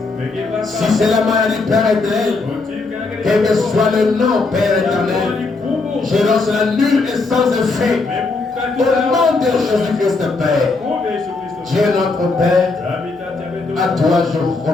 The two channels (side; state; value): right; quieter; 3.7 dB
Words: Si c'est la maladie, Père éternel, quel que soit le nom, Père éternel, je lance la nulle et sans effet. Au nom de Jésus-Christ, Père. Dieu notre Père, à toi je